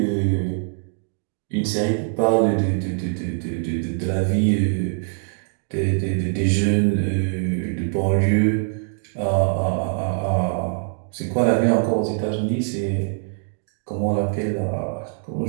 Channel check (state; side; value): silent; left; 63 dB below the other